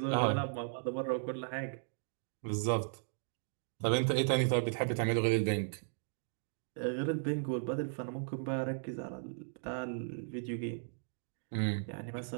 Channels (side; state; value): left; silent; digital silence